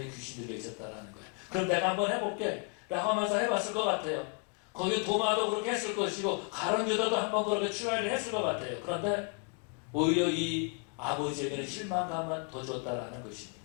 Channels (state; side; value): quieter; right; 33.8 dB